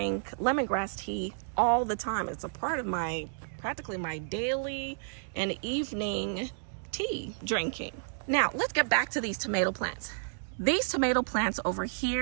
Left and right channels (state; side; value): silent; left; digital silence